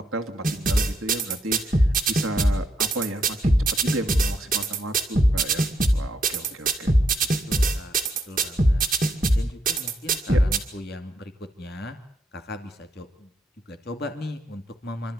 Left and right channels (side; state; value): both; normal; correlation 0.77